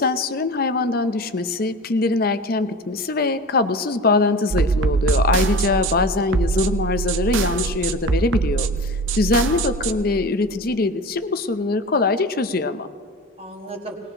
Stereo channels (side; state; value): both; normal; correlation 0.33